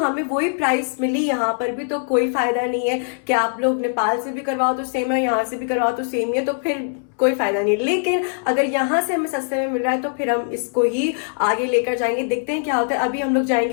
वही प्राइस मिली यहाँ पर भी तो कोई फायदा नहीं है कि आप लोग नेपाल से भी करवाओ तो सेम है, यहाँ से भी करवाओ तो सेम ही है, तो फिर कोई फायदा नहीं। लेकिन अगर यहाँ से हमें सस्ते में मिल रहा है तो फिर हम इसको ही आगे लेकर जाएंगे, देखते हैं क्या होता है। अभी हम लोग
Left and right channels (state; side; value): silent; right; 65 dB below the other